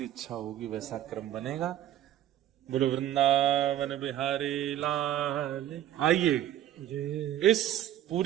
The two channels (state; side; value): quieter; left; 12.1 dB